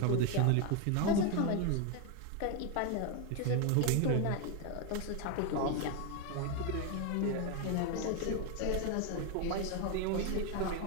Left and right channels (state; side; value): different; both; correlation 0.01